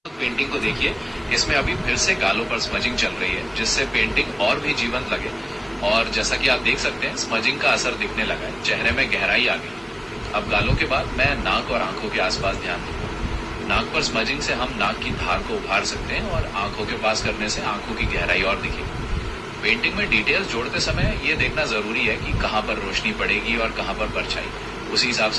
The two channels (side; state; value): both; identical; correlation 1.00